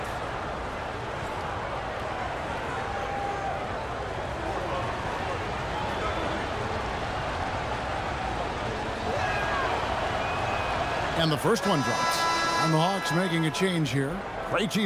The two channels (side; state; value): both; identical; correlation 1.00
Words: And the first one drops. And the Hawks making a change here.